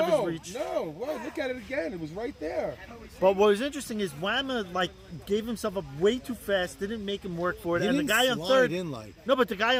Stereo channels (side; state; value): both; identical; correlation 1.00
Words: his reach. No, well, look at it again. It was right there. But what was interesting is Whammo gave himself up way too fast. Didn't make him work for it. He And the didn't guy on slide third. in like. No, but the guy